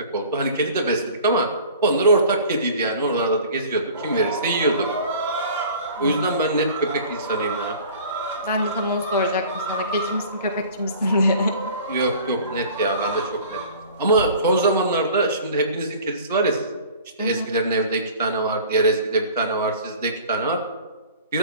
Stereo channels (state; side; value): inverted; both; correlation -0.45